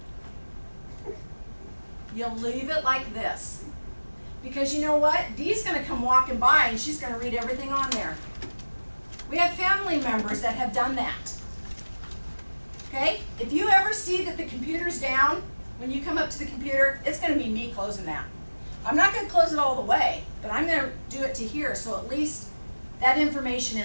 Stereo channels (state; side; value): inverted; both; correlation -1.00